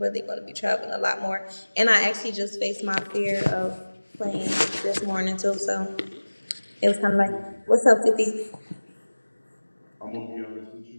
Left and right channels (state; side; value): inverted; both; correlation -1.00